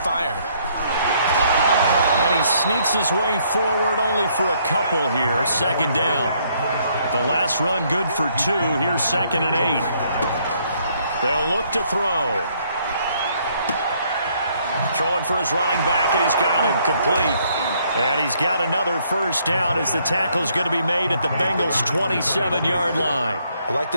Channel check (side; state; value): both; inverted; correlation -0.68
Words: And he sneaks his way forward only for a couple here. 2nd down. The last run good for 2. Here's 2nd and 8. They'll look to throw. Throwing for his running back, and he's got him complete. And he's got another 1st down as the tackle's going to be made at the Bengals' 27-yard line. I like